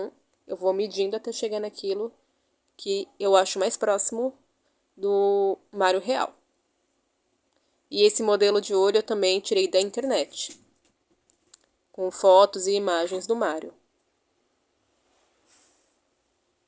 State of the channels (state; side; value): identical; both; correlation 1.00